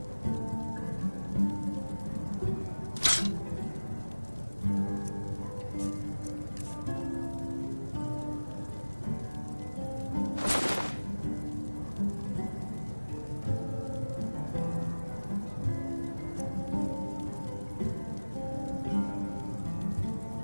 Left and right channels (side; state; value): both; inverted; correlation -1.00